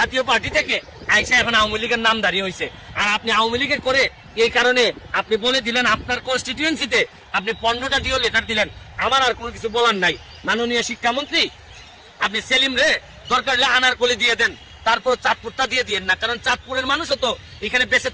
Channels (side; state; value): both; identical; correlation 1.00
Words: পার্টি থেকে আইসা এখন আওয়ামী লীগের নামধারী হয়েছে। আর আপনি আওয়ামী লীগের করে এই কারণে আপনি বলে দিলেন আপনার কনস্টিটিউয়েন্সিতে আপনি 15টা ডিও লেটার দিলেন। আমার আর কোনো কিছু বলার নাই মাননীয় শিক্ষামন্ত্রী, আপনি সেলিম রে দরকার হলে আনারকলি দিয়ে দেন, তারপর চাঁদপুরটা দিয়ে দিয়েন না, কারণ চাঁদপুরের মানুষও তো এখানে বেঁচে